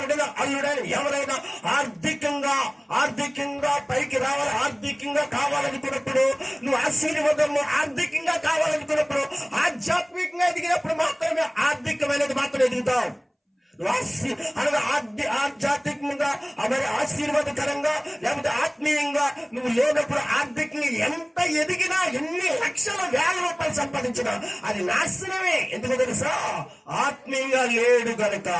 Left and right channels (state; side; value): identical; both; correlation 1.00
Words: అల్లుడైనా, ఎవరైనా ఆర్థికంగా పైకి రావాలి, ఆర్థికంగా కావాలనుకున్నప్పుడు, నువ్వు ఆశీర్వాదము ఆర్థికంగా కావాలనుకున్నప్పుడు, ఆధ్యాత్మికంగా ఎదిగినప్పుడు మాత్రమే ఆర్థికమైనది మాత్రం ఎదుగుతావు. అనగా ఆధ్యాత్మికంగా మరి ఆశీర్వాదకరంగా లేకపోతే ఆత్మీయంగా నువ్వు లేనప్పుడు ఆర్థికంగా ఎంత ఎదిగినా, ఎన్ని లక్షల వేల రూపాయలు సంపాదించినా అది నాశనమే. ఎందుకు తెలుసా? ఆత్మీయంగా లేదు గనుక